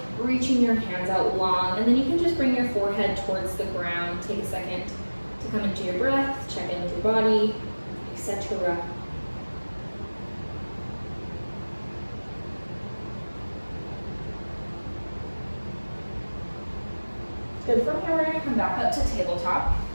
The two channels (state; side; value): inverted; both; correlation -1.00